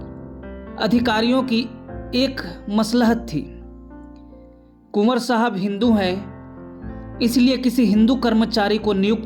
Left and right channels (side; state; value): both; identical; correlation 1.00